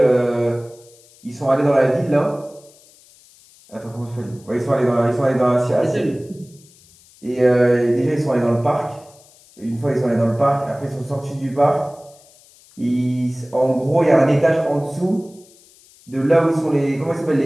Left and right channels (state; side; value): noise; left; hiss, 27 dB below the sound